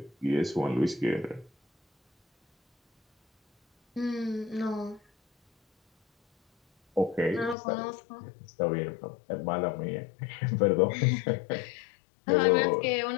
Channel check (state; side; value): drops out; right; at 7.6 s